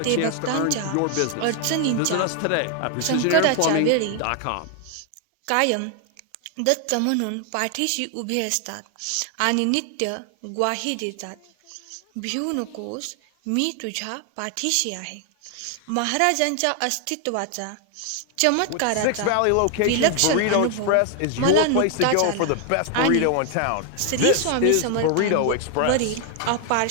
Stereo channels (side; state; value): both; different; correlation 0.00